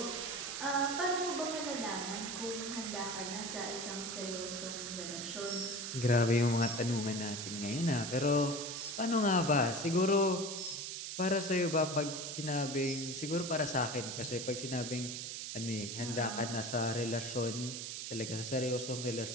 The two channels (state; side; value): noise; right; hiss, 5 dB below the sound